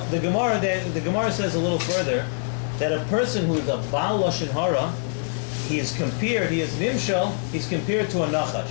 the Gemara. The Gemara says a little further that a person who is a Baal Lashon Hara, he is compared to a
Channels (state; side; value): silent; right; digital silence